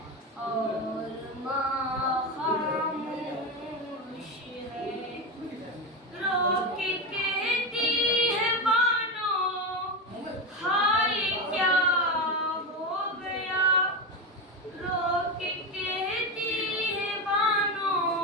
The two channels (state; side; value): normal; both; correlation 0.15